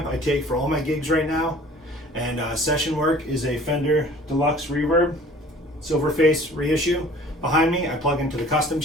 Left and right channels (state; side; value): normal; both; correlation 0.49